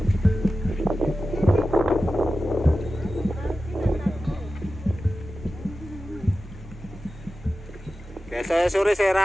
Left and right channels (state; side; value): normal; both; correlation 0.94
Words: Biasa sore saya